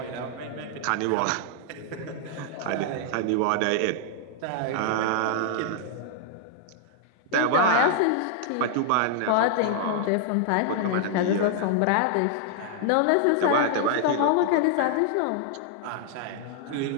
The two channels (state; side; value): different; both; correlation -0.01